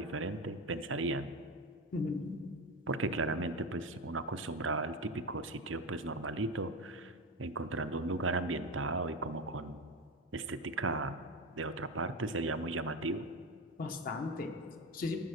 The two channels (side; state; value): both; normal; correlation 0.19